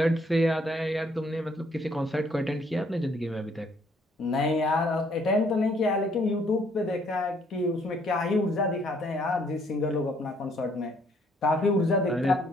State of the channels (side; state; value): both; normal; correlation 0.65